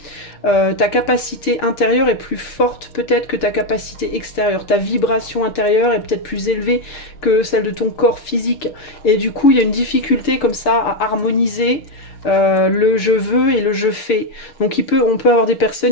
Ta capacité intérieure est plus forte peut-être que ta capacité extérieure. Ta vibration intérieure est peut-être plus élevée que celle de ton corps physique. Et du coup, il y a une difficulté comme ça à harmoniser le je veux et le je fais. Donc on peut avoir des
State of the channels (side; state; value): right; late; 6.4 ms